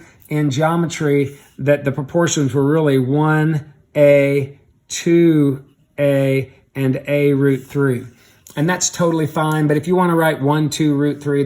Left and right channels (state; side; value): identical; both; correlation 1.00